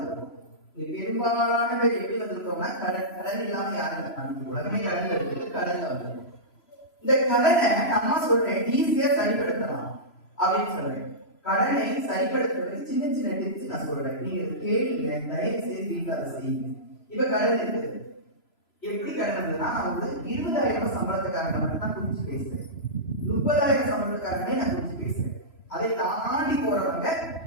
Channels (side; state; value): right; late; 3.0 ms